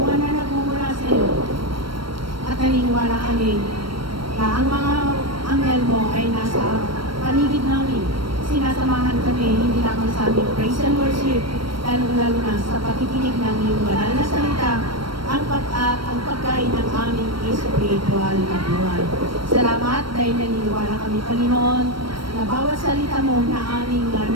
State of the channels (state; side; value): late; left; 0.73 ms